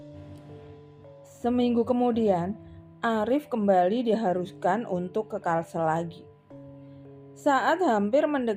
Seminggu kemudian, Arif kembali diharuskan untuk ke Kalsel lagi. Saat hampir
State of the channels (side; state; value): both; identical; correlation 1.00